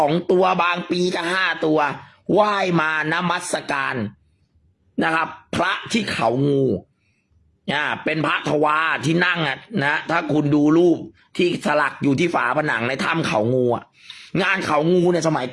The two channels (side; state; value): both; identical; correlation 1.00